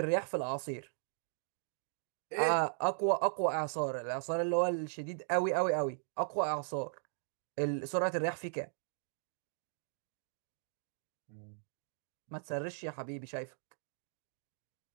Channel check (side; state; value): left; silent; digital silence